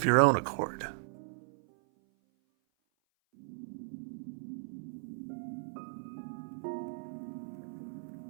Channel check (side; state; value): left; silent; 54 dB below the other